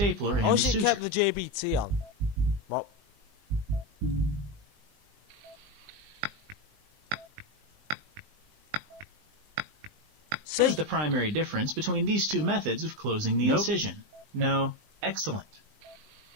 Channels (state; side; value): late; left; 20 ms